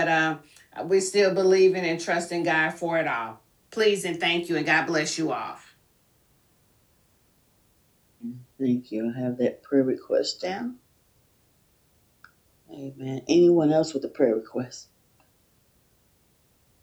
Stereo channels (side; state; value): both; identical; correlation 1.00